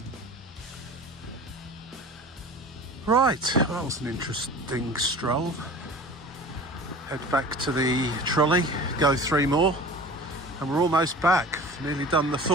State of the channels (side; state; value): both; normal; correlation 0.40